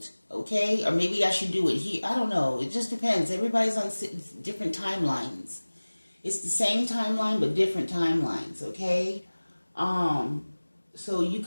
okay? Or maybe I should do it here. I don't know. It just depends. Everybody's on different timelines. It's the same timeline, but different timelines, okay? So you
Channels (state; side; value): inverted; both; correlation -1.00